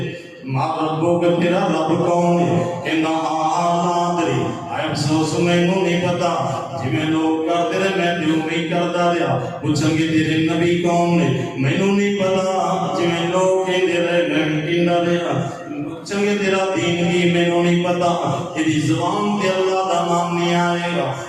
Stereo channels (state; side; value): identical; both; correlation 1.00